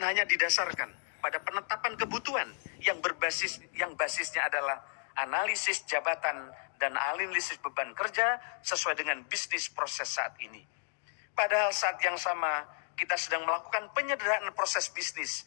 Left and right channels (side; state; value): right; silent; digital silence